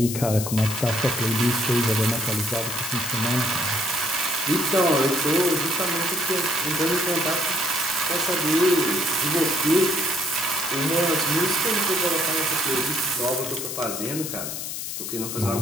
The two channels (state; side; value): noise; left; hiss, 5 dB below the sound